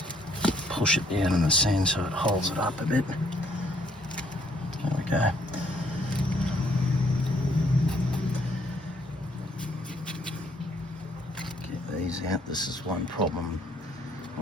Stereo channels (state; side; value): normal; both; correlation 0.66